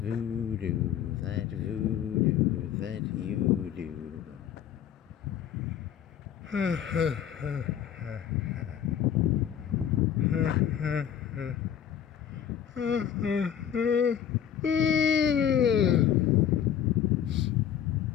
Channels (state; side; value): quieter; right; 9.4 dB